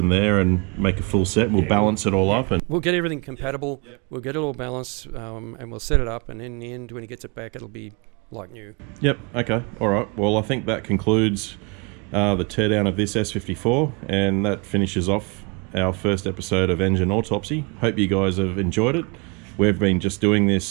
there and make a full set. We'll balance it all up, and we'll get everything compatible. We'll get it all balanced, and we'll set it up, and in the end when he gets it back it'll be like new. Yep. Okay. All right. Well, I think that concludes the teardown of this S54, and that finishes off our first episode of Engine Autopsy. Hope you guys have enjoyed it. We've been just doing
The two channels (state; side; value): quieter; left; 31.0 dB